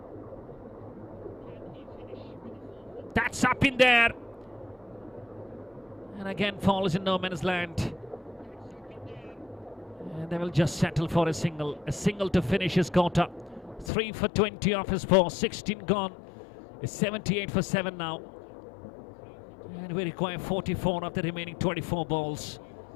That's up in there. And again falls in no man's land. And they will just settle for a single to finish his quarter. 3 for 20 off his 4, 16 gone. It's 78 for 7 now. And we require 44 of the remaining 24 balls.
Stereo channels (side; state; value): right; drops out; at 13.9 s